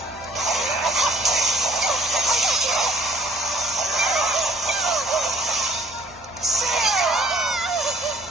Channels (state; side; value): normal; both; correlation 0.59